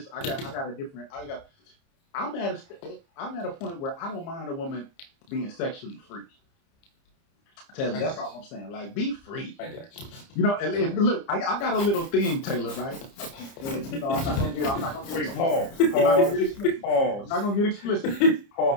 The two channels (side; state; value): right; late; 30 ms